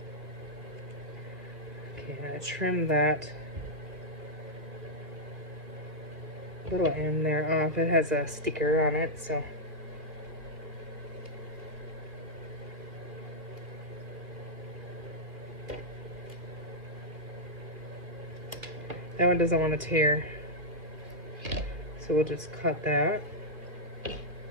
Okay, I'm gonna trim that little end there off. It has a sticker on it, so. That one doesn't want to tear. So we'll just cut that.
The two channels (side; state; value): left; late; 2.4 ms